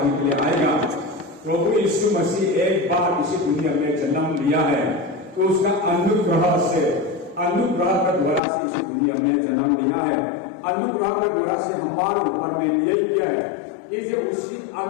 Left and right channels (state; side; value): drops out; right; at 8.4 s